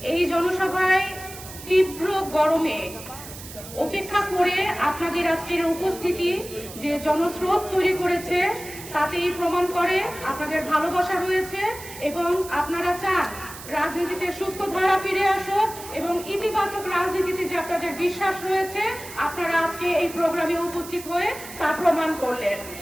এই জনসভায় তীব্র গরমে উপেক্ষা করে আপনাদের আজকের উপস্থিতি যে জনস্রোত তৈরি করেছে তাতেই প্রমাণ করে আপনাদের ভালোবাসা রয়েছে এবং আপনারা চান রাজনীতিতে সুস্থ ধারা ফিরে আসুক এবং ইতিবাচক রাজনীতিতে যে আপনাদের বিশ্বাস রয়েছে, আপনারা আজকে এই প্রোগ্রামে উপস্থিত হয়ে তা প্রমাণ করলেন।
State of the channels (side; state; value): right; noise; hiss, 14 dB below the sound